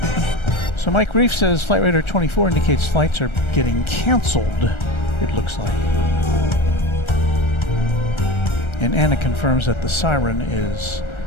So Mike Reef says Flight Radar 24 indicates flights are getting canceled, it looks like. And Anna confirms that the siren is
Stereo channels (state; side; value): late; right; 1.3 ms